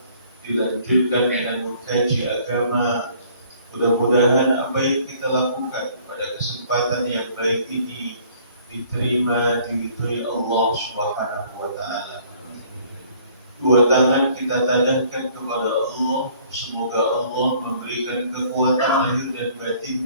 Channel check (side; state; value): both; inverted; correlation -0.58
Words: dilanjutkan dengan mengkaji agama. Mudah-mudahan apa yang kita lakukan pada kesempatan yang baik ini diterima, diridhoi Allah Subhanahu wa taala. Dua tangan kita tadahkan kepada Allah, semoga Allah memberikan kekuatan lahir dan